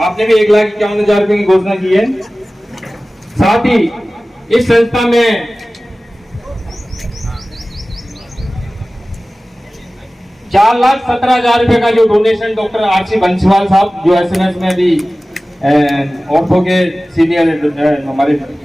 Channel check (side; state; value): both; normal; correlation 0.97